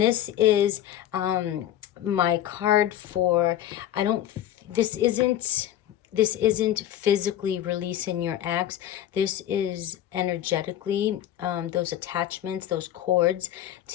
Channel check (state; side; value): quieter; right; 11.8 dB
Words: is my card for, this isn't physically releasing your ex. This is energetically, those attachments, those cords